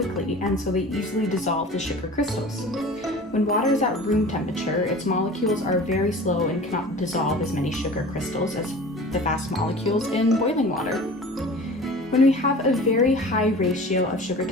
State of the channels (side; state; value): both; normal; correlation 0.40